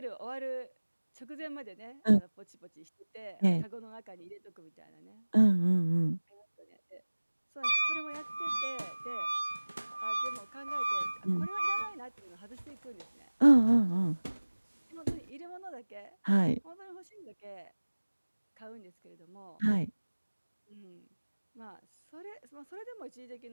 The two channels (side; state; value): both; inverted; correlation -1.00